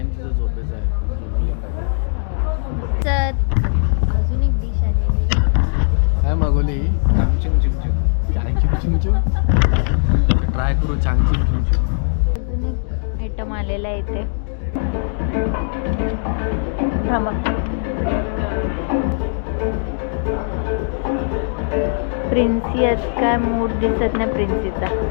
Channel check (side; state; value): right; silent; digital silence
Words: तिचा झोपेचा आहे. तर अजून एक डिश आलेली. काय मागवली चांगचिंग चिमचिम. चांगचिंग चिमचिम. ट्राय करू चांगचिंग चिमचिम. अजून एक आयटम आलेला आहे इथे. थांबा. प्रिन्सी आज काय मूड दिसत नाही प्रिन्सीचा.